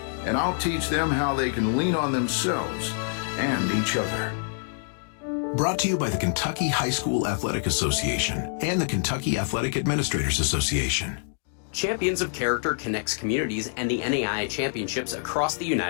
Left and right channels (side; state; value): right; silent; digital silence